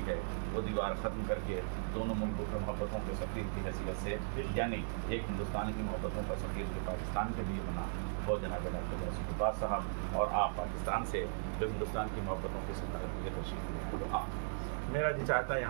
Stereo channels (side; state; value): left; silent; digital silence